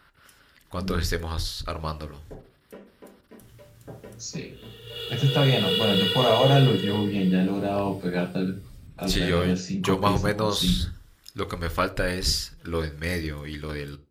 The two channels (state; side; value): identical; both; correlation 1.00